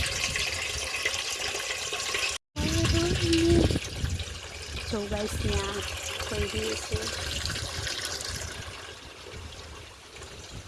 જો ગાઈસ ત્યાં કોઈ બી છે.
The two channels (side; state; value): both; identical; correlation 1.00